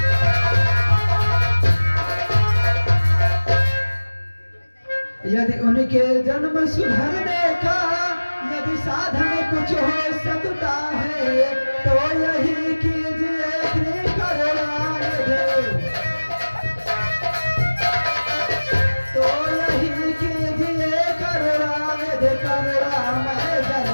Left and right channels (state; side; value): inverted; both; correlation -1.00